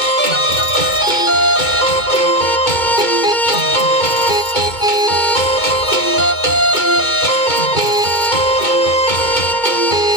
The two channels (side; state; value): right; late; 2.2 ms